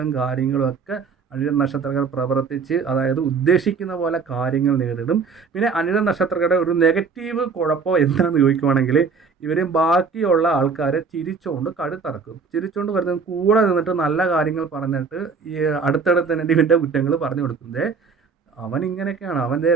കാര്യങ്ങളും ഒക്കെ അനിഴം നക്ഷത്രക്കാർ പ്രവർത്തിച്ച്, അതായത് ഉദ്ദേശിക്കുന്ന പോലെ കാര്യങ്ങൾ നേരിടും. പിന്നെ അനിഴം നക്ഷത്രക്കാരുടെ ഒരു നെഗറ്റീവ് കുഴപ്പം എന്താണെന്ന് ചോദിക്കുവാണെങ്കിൽ ഇവർ ബാക്കിയുള്ള ആൾക്കാരെ ചിരിച്ചുകൊണ്ട് കഴുത്തറക്കും. ചിരിച്ചുകൊണ്ട് വരുന്നത് കൂടെ നിന്നിട്ട് നല്ല കാര്യങ്ങൾ പറഞ്ഞിട്ട് ഈ അടുത്തടുത്ത് തന്നെ ഇവൻ്റെ കുറ്റങ്ങൾ പറഞ്ഞു കൊടുക്കുന്നത്. അവൻ ഇങ്ങനെയൊക്കെയാണ്,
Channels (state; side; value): quieter; left; 5.3 dB